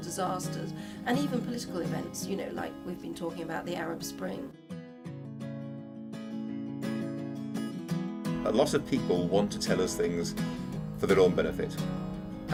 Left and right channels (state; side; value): identical; both; correlation 1.00